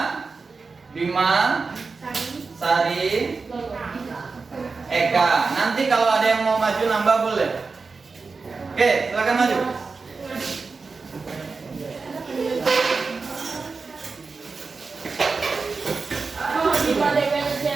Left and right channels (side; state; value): left; quieter; 4.4 dB